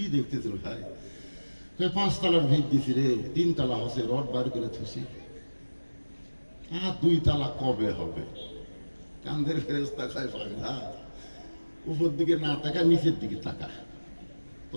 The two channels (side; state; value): both; inverted; correlation -1.00